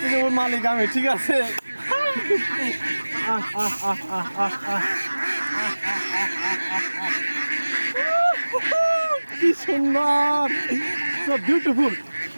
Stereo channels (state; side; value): inverted; both; correlation -1.00